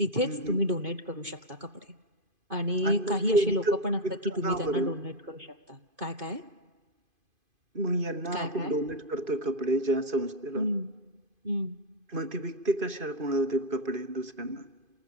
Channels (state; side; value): late; left; 2.5 ms